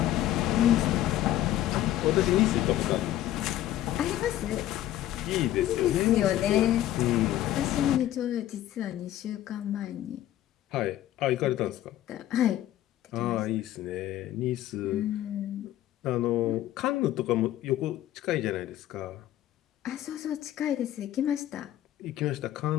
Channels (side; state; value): right; quieter; 13.2 dB